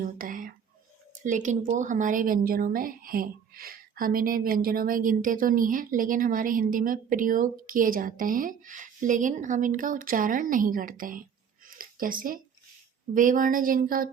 होता है, लेकिन वो हमारे व्यंजनों में हैं। हम इन्हें व्यंजनों में गिनते तो नहीं हैं, लेकिन हमारे हिंदी में प्रयोग किए जाते हैं, लेकिन हम इनका उच्चारण नहीं करते हैं। जैसे वे वर्ण जिनका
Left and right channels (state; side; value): quieter; left; 7.4 dB